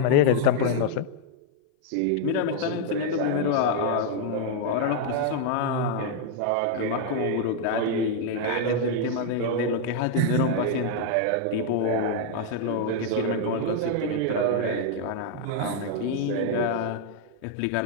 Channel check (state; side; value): different; both; correlation 0.00